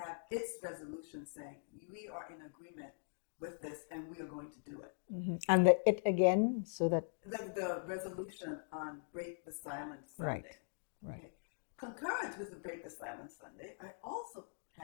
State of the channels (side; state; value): right; silent; digital silence